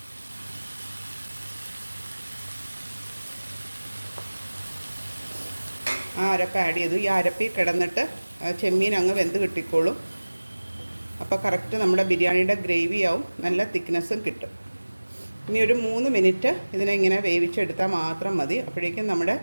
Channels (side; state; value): both; inverted; correlation -1.00